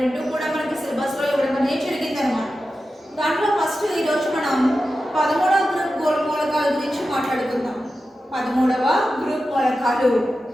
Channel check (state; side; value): normal; both; correlation 0.92